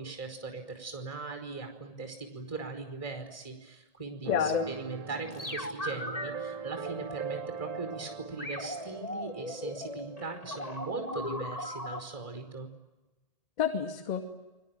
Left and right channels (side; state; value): right; late; 1.6 ms